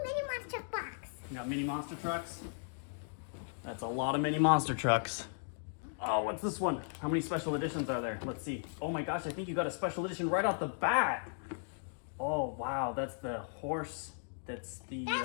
mini monster box. You got mini monster trucks? That's a lot of mini monster trucks. Oh, what's this one? How many special editions are there? Let's see. Oh my gosh, I think you got a special edition right off the bat. Oh wow, that's the horse. That's the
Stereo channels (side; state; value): right; silent; digital silence